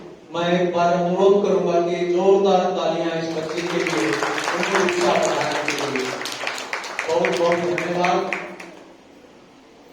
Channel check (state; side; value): identical; both; correlation 1.00